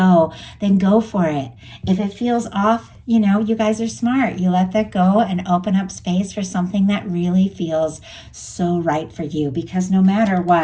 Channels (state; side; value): identical; both; correlation 1.00